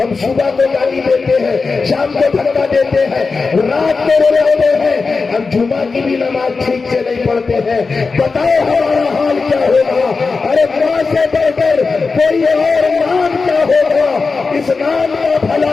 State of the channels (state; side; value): quieter; right; 4.4 dB